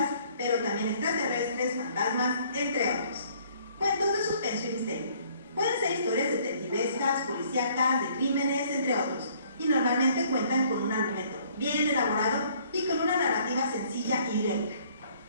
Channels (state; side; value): inverted; both; correlation -0.60